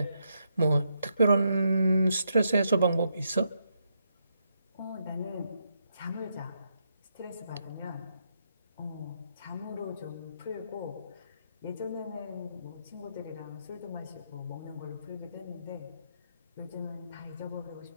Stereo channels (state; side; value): inverted; both; correlation -0.79